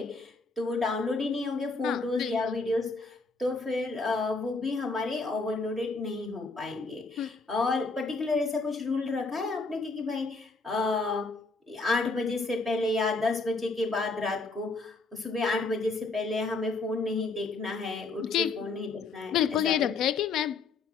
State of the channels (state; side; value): quieter; right; 3.8 dB